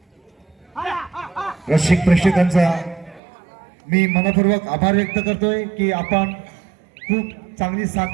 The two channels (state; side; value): drops out; left; at 3.2 s